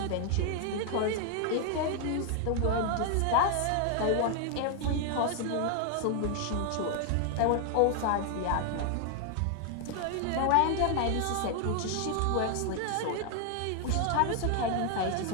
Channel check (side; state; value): both; different; correlation 0.00